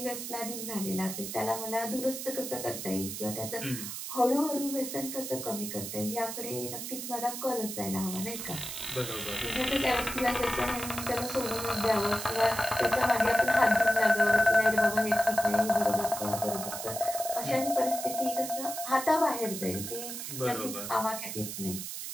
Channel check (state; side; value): noise; right; hiss, 7 dB below the sound